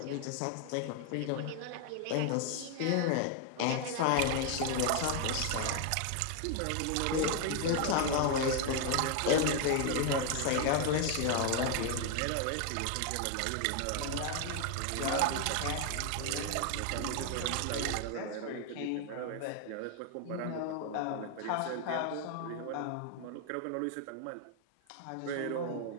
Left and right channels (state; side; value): different; both; correlation 0.01